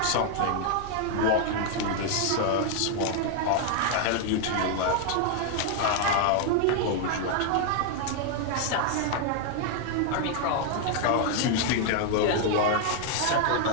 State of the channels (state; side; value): different; both; correlation 0.00